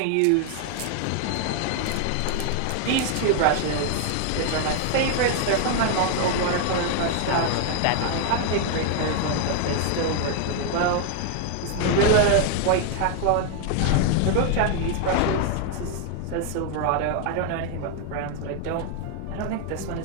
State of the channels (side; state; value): both; different; correlation 0.00